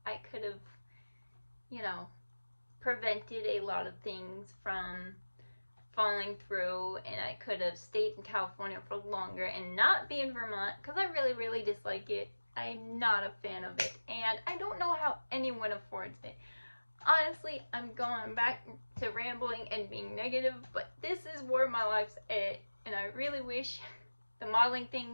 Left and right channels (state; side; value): inverted; both; correlation -1.00